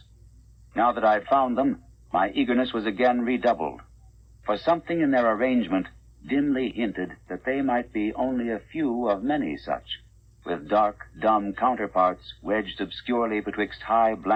Now that I had found them, my eagerness was again redoubled, for something in their arrangement dimly hinted that they might be only a few of many such, with dark, dumb counterparts wedged obscurely betwixt high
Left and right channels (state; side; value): identical; both; correlation 1.00